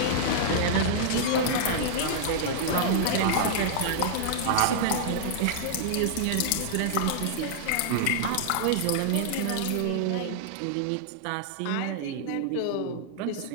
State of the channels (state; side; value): different; both; correlation -0.01